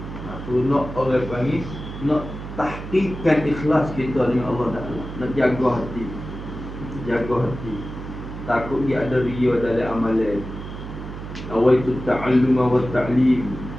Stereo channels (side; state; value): right; noise; hum, 10 dB below the sound